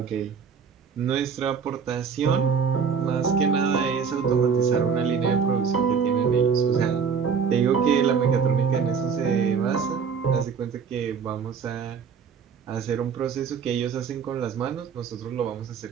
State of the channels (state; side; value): quieter; left; 6.4 dB